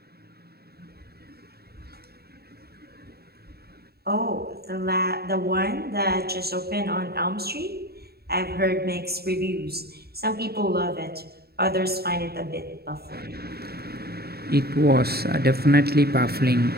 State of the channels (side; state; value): left; late; 0.46 ms